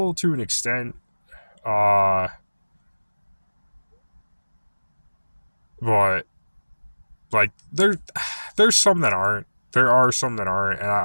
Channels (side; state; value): both; inverted; correlation -1.00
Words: to an extent, uh, but like there's some that aren't. There are some that aren't, and